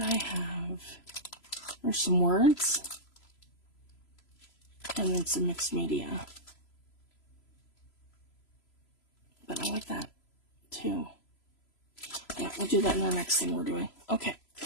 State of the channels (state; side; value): late; right; 3.0 ms